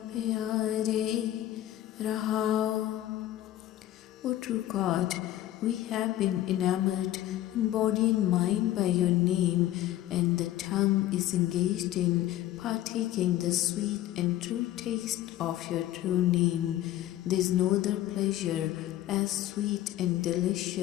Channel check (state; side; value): quieter; right; 13.8 dB